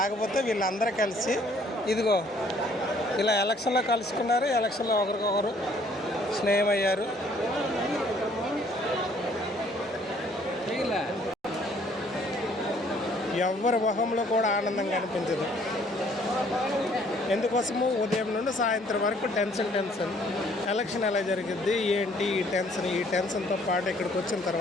వీళ్ళందరూ కలిసి ఇదిగో ఇలా ఎలక్షన్లో కలుసుకున్నారు. ఎలక్షన్లో ఒకరికొకరు స్నేహమయ్యారు. ఎవరి మొహంలో కూడా ఆనందంగా అనిపించదు. ఎందుకోసము ఉదయం నుండి సాయంత్రం వరకు టెన్షన్. ఎలక్షన్ ఎలా జరిగిద్ది ఏంటి ఈ టెన్షన్తో పాటు ఇక్కడికి వచ్చిన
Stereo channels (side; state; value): both; normal; correlation 0.61